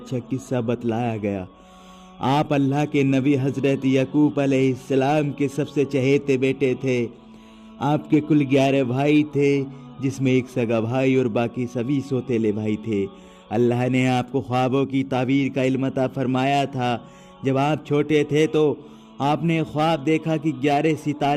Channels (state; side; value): identical; both; correlation 1.00